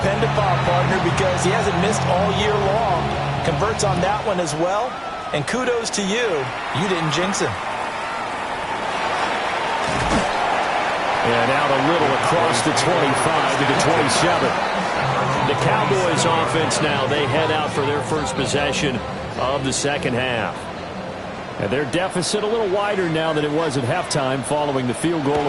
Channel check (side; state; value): both; identical; correlation 1.00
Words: upon, partner, because he hasn't missed all year long. Converts on that one as well. And kudos to you. You didn't jinx him. And out a little across the 25 to the 27. The Cowboys offense now, they head out for their first possession of the 2nd half. And their deficit a little wider now than it was at halftime following the field goal